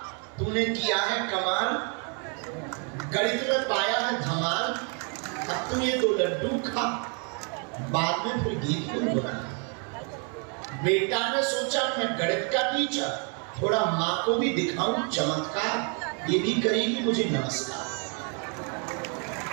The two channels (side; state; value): left; quieter; 38.0 dB